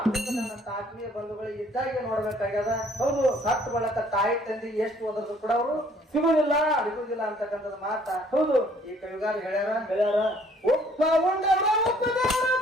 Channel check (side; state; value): both; normal; correlation 0.60